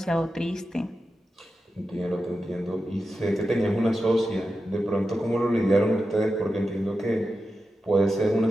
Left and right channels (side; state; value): both; normal; correlation 0.90